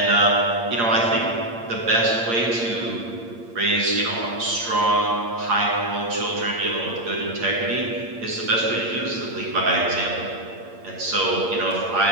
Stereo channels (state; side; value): late; left; 8.7 ms